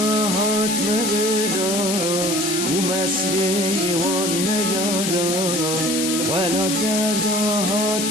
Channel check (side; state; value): left; noise; hiss, 1 dB below the sound